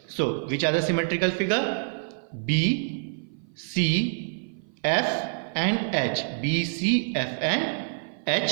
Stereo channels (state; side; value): silent; left; 55 dB below the other